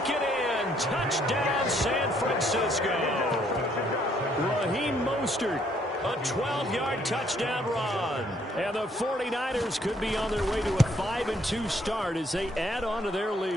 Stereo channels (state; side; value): normal; both; correlation 0.67